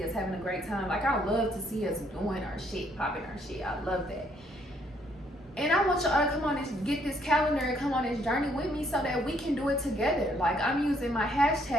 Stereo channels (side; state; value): both; normal; correlation 0.68